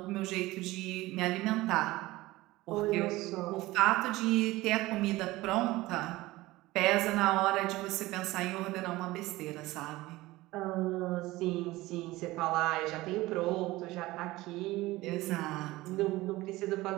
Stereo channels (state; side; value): quieter; left; 18.8 dB